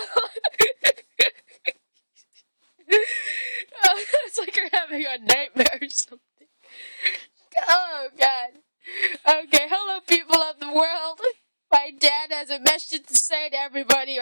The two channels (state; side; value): inverted; both; correlation -1.00